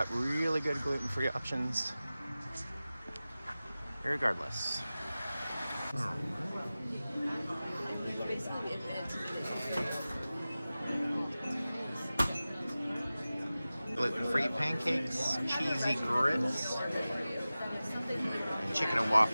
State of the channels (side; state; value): both; inverted; correlation -0.96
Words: really good gluten-free options. Irregardless. Gluten-free pancakes, cheesy grits, and chicken and